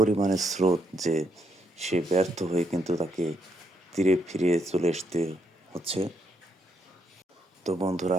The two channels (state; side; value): normal; both; correlation 0.76